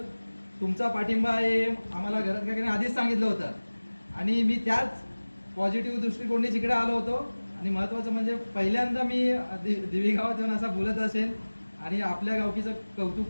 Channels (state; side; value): inverted; both; correlation -1.00